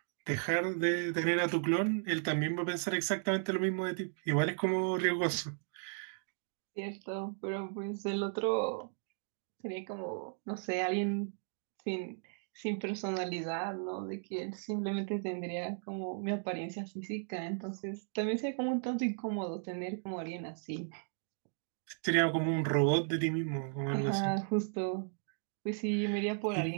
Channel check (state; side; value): silent; left; digital silence